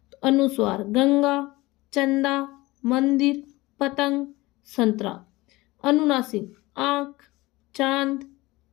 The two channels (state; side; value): quieter; right; 20.4 dB